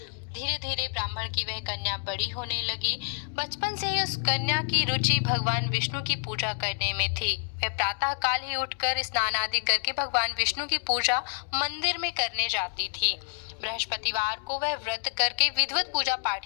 धीरे धीरे ब्राह्मण की वह कन्या बड़ी होने लगी। बचपन से ही उस कन्या की रुचि भगवान विष्णु की पूजा करने में थी। वह प्रातः काल ही उठकर स्नान आदि करके भगवान विष्णु की पूजा मंदिर में करने जाती थी। बृहस्पतिवार को वह व्रत करके विधिवत पूजा पाठ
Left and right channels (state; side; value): silent; right; digital silence